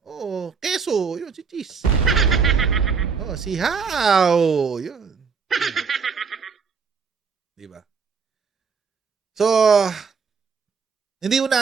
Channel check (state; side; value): quieter; left; 5.6 dB